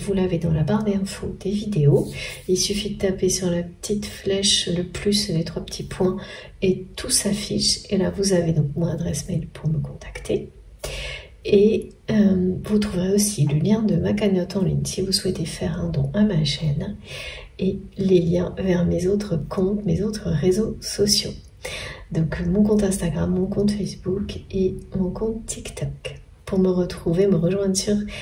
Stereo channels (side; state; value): both; identical; correlation 1.00